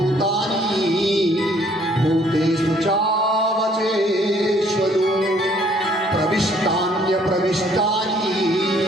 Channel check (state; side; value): normal; both; correlation 0.62